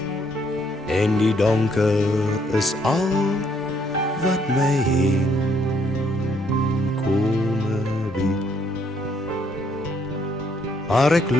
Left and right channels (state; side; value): normal; both; correlation 0.69